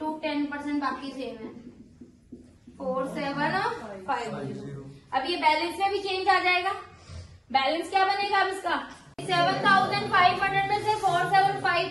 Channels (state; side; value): identical; both; correlation 1.00